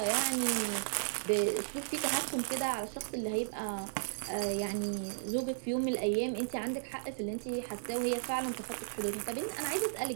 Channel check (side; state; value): left; silent; digital silence